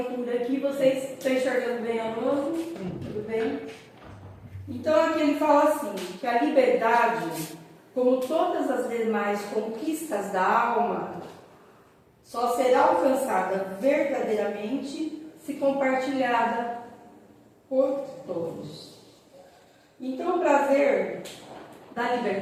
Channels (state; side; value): identical; both; correlation 1.00